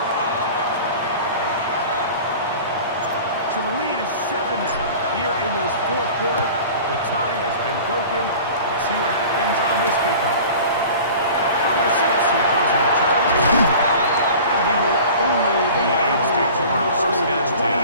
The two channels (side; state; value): both; inverted; correlation -0.41